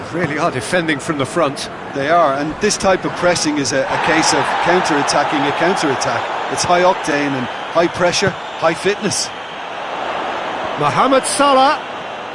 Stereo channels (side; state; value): both; identical; correlation 1.00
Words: really are defending from the front. They are, and this type of pressing is a case of counter-attacking a counter-attack. It's high octane and high pressure, high fitness. Mohamed Salah.